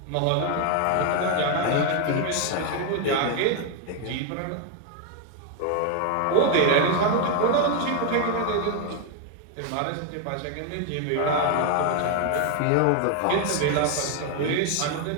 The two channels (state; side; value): different; both; correlation 0.01